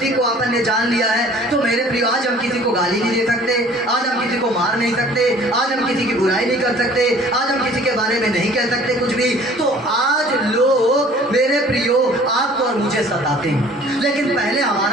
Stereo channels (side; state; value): both; normal; correlation 0.51